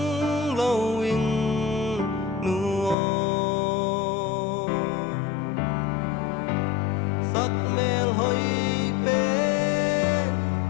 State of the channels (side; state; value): right; drops out; at 3.0 s